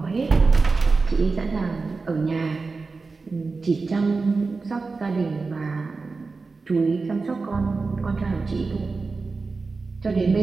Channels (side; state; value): left; quieter; 4.1 dB